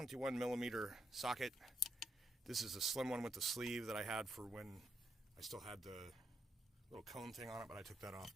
millimeter socket. This is a slim one with the sleeve that I had for when I still had the little cone thing on it, but I took that off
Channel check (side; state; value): both; normal; correlation 0.80